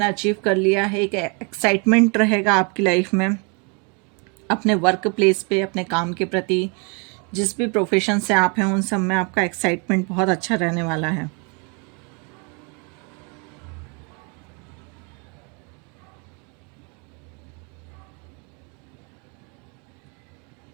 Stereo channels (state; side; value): quieter; left; 33.8 dB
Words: अचीव कर लिया है। एक एक्साइटमेंट रहेगा आपकी लाइफ में, अपने वर्क प्लेस पे, अपने काम के प्रति। जिस भी प्रोफेशन से आप हैं उन सब में आपका एक्साइटमेंट बहुत अच्छा रहने वाला है।